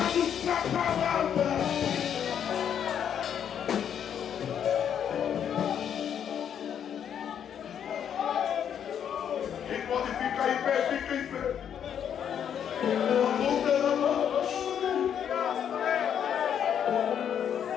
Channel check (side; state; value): right; quieter; 8.8 dB